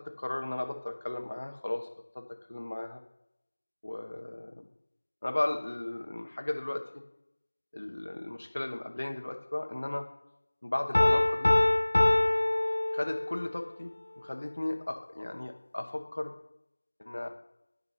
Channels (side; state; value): both; inverted; correlation -1.00